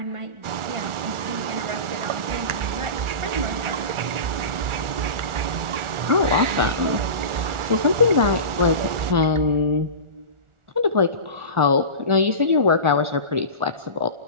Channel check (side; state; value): left; late; 1.4 ms